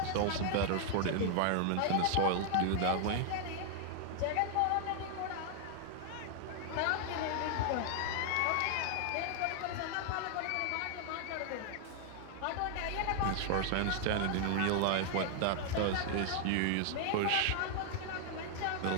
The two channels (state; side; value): different; both; correlation 0.00